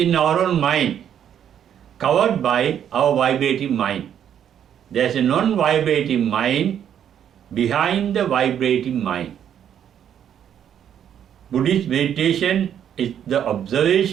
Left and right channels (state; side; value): quieter; left; 9.4 dB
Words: our own mind, covered by our vibrating mind. There is a non-vibrating mind behind the vibrating mind. Buddhist meditation is the